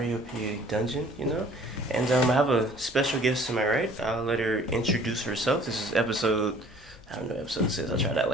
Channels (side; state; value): both; normal; correlation 0.53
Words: dungeon, and I have a special guest to my right. I'll let her introduce herself. This is episode. I don't know what episode this is. I'll try to act